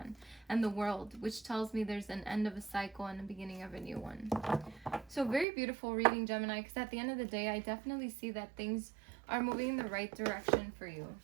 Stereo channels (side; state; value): left; drops out; at 5.5 s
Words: and the World, which tells me there's an end of a cycle and the beginning of a new one. So very beautiful reading, Gemini, because at the end of the day, I definitely see that things are moving in the right direction for you.